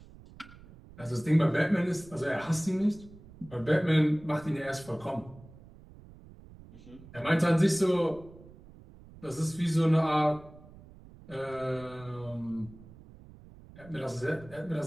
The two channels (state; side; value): noise; right; rumble, 20 dB below the sound